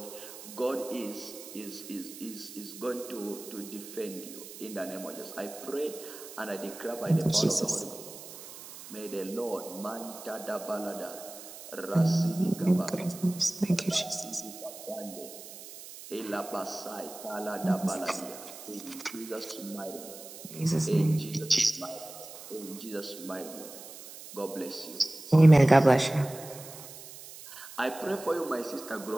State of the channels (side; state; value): right; noise; hiss, 14 dB below the sound